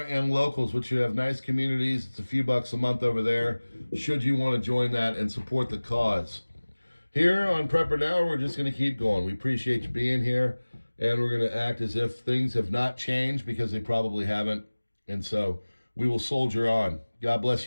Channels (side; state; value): both; inverted; correlation -1.00